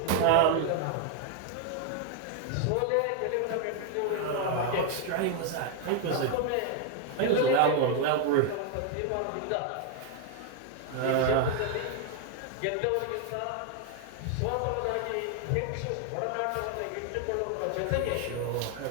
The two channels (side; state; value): both; different; correlation 0.00